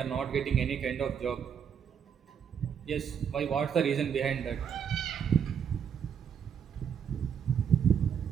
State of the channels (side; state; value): left; quieter; 7.8 dB